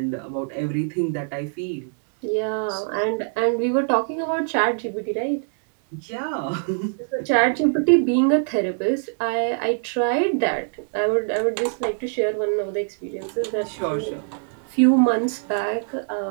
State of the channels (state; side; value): silent; left; digital silence